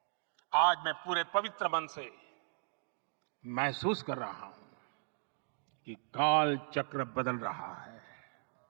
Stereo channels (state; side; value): silent; left; digital silence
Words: आज मैं पूरे पवित्र मन से महसूस कर रहा हूं कि काल चक्र बदल रहा है।